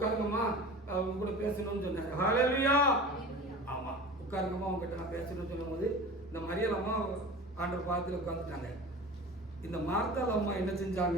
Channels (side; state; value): both; normal; correlation 0.36